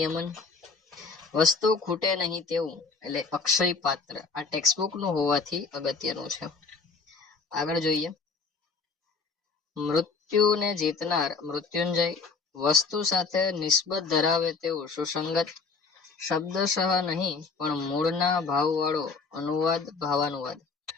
વસ્તુ ખૂટે નહીં તેવું એટલે અક્ષય પાત્ર, આ ટેક્સ્ટબુક નું હોવાથી અગત્યનું છે. આગળ જોઈએ. મૃત્યુને જીતનાર મૃત્યુંજય, વસ્તુ સાથે નિસ્બત ધરાવે તેવું સુસંગત, શબ્દશઃ નહીં પણ મૂળના ભાવવાળો અનુવાદ ભાવાનુવાદ,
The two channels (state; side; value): quieter; right; 4.6 dB